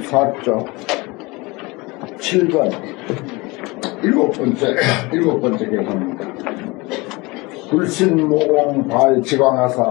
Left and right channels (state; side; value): quieter; right; 24.3 dB